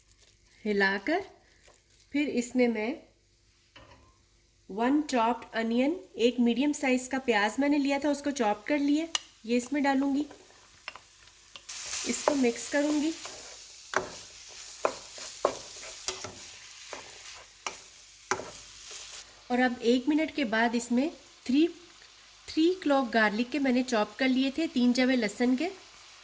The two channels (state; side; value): identical; both; correlation 1.00